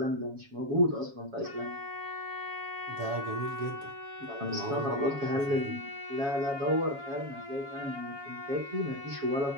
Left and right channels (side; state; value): left; late; 7.2 ms